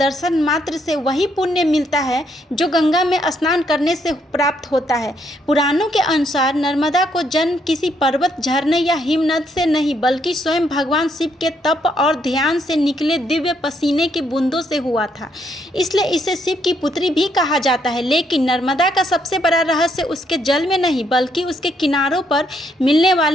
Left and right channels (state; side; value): normal; both; correlation 0.73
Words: मात्र से वही पुण्य मिलता है जो गंगा में स्नान करने से प्राप्त होता है? पुराणों के अनुसार नर्मदा को जन्म किसी पर्वत, झरने या हिमनद से नहीं बल्कि स्वयं भगवान शिव के तप और ध्यान से निकले दिव्य पसीने की बूंदों से हुआ था। इसलिए इसे शिव की पुत्री भी कहा जाता है। लेकिन नर्मदा का सबसे बड़ा रहस्य उसके जल में नहीं बल्कि उसके किनारों पर मिलने